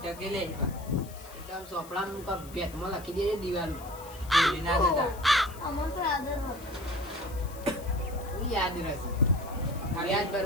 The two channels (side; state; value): left; noise; hiss, 19 dB below the sound